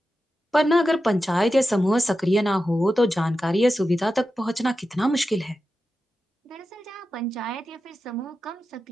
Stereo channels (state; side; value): normal; both; correlation 0.91